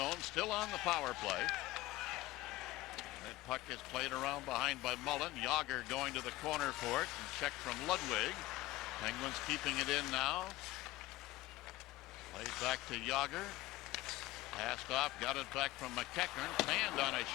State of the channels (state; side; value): quieter; right; 18.0 dB